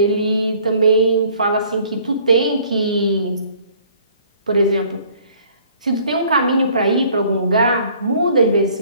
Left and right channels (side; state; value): both; inverted; correlation -0.57